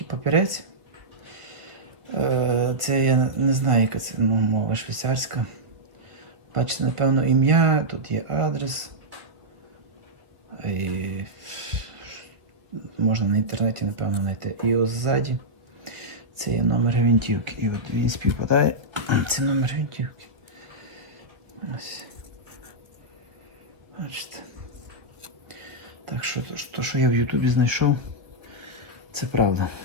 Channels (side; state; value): left; late; 1.7 ms